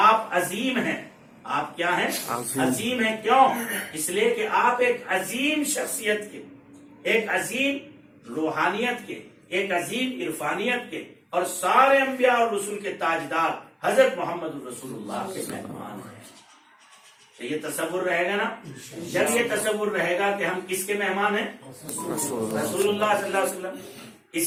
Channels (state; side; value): identical; both; correlation 1.00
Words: عظیم ہیں, آپ کیا ہیں, عظیم ہیں. کیوں؟ اس لیے کہ آپ ایک عظیم شخصیت کے, ایک عظیم روحانیت کے, ایک عظیم عرفانیت کے, اور سارے انبیاء اور رسول کے تاجدار حضرت محمد رسول اللہ کے مہمان ہیں. یہ تصور رہے گا نا, جب یہ تصور رہے گا کہ ہم کس کے مہمان ہیں, رسول اللہ صلی اللہ علیہ وسلم.